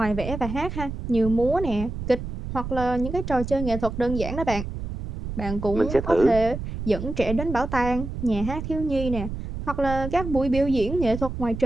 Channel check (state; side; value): noise; right; rumble, 7 dB below the sound